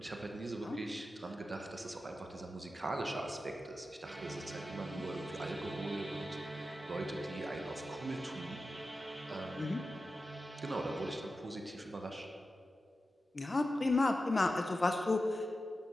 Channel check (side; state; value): both; normal; correlation 0.92